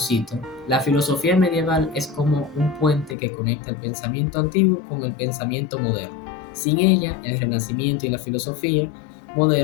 la filosofía medieval es como un puente que conecta el pensamiento antiguo con el pensamiento moderno. Sin ella, el Renacimiento y la filosofía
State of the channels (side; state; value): right; drops out; at 3.2 s